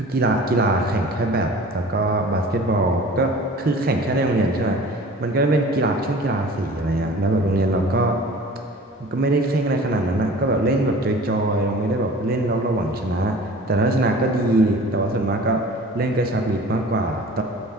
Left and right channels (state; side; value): normal; both; correlation 0.43